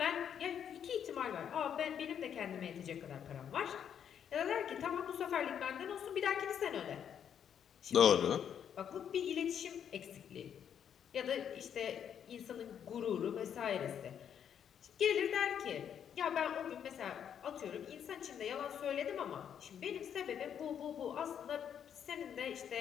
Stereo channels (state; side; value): quieter; right; 8.6 dB